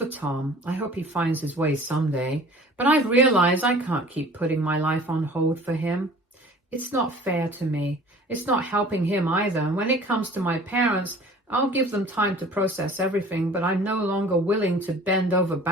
Tom, I hope he finds his way someday, but I've realized I can't keep putting my life on hold for him. It's not fair to me. It's not helping him either. And when it comes to my parents, I'll give them time to process everything, but I'm no longer willing to bend over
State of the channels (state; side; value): normal; both; correlation 0.47